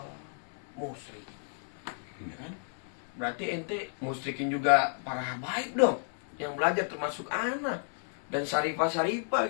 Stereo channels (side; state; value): right; silent; 56 dB below the other